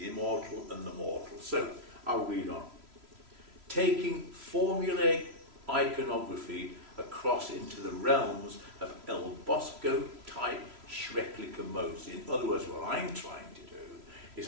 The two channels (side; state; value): left; late; 3.0 ms